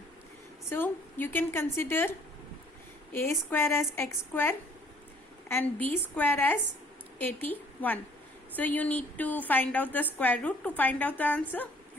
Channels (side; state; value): both; normal; correlation 0.58